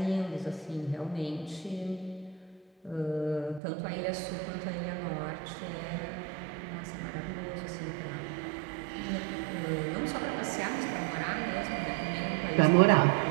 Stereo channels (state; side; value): drops out; left; at 3.6 s